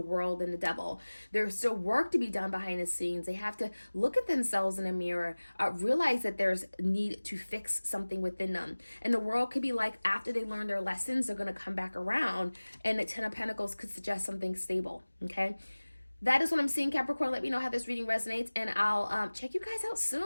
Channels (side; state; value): both; inverted; correlation -1.00